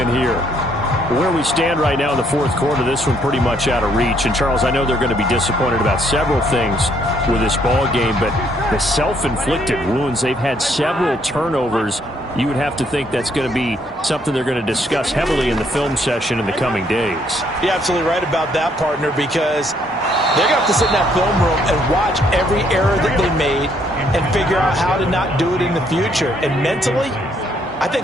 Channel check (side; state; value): both; normal; correlation 0.69